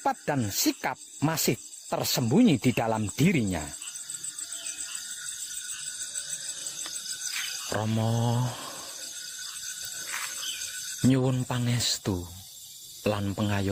dan sikap masih tersembunyi di dalam dirinya. Rama nyuwun pangestu lan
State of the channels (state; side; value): identical; both; correlation 1.00